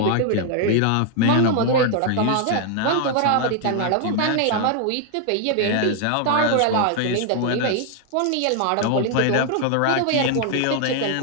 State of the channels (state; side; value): different; both; correlation 0.00